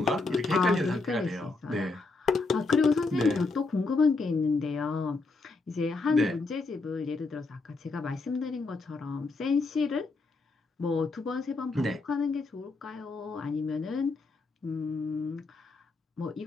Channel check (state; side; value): quieter; right; 3.6 dB